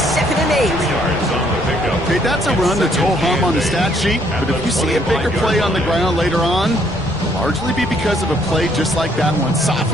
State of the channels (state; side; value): noise; left; rumble, 20 dB below the sound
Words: and 8. Okay, that's a run that's ho-hum on the stat sheet, but if you see a bigger play on the ground later on, it'll largely be because of a play just like that one,